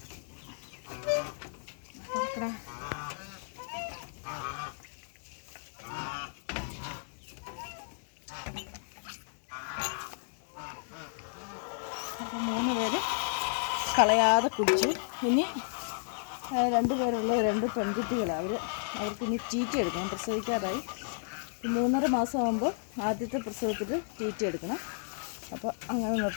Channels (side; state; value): right; silent; digital silence